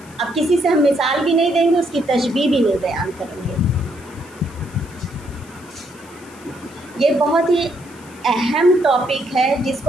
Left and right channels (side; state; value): left; noise; hiss, 24 dB below the sound